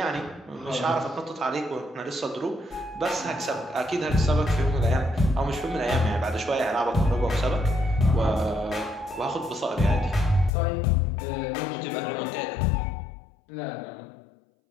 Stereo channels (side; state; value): right; drops out; at 10.5 s